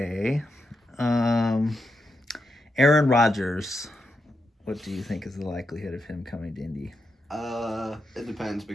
Um, Aaron Rodgers. What do you think is the likelihood of him coming to Indy? It depends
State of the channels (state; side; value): normal; both; correlation 0.85